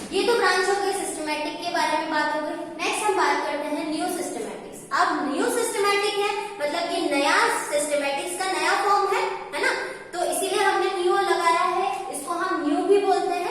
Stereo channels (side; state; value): both; identical; correlation 1.00